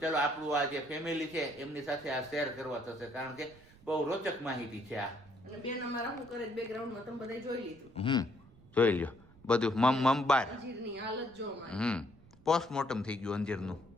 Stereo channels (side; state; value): right; noise; rumble, 25 dB below the sound